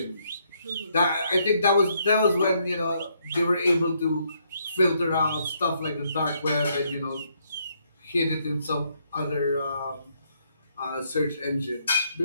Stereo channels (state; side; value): inverted; both; correlation -0.73